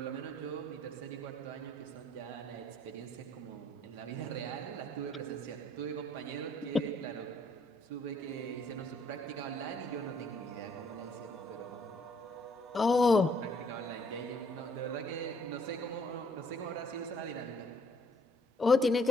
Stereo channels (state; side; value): normal; both; correlation 0.64